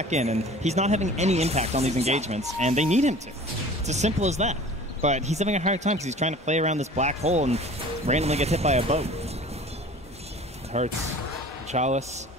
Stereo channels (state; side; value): normal; both; correlation 0.44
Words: in, and he's not having any impact on these engagements, and they need him to. It's as simple as that. But he's having a hard time because he's trying to play around this black hole and randomly gets hit by a boat. It hurts. Chalice.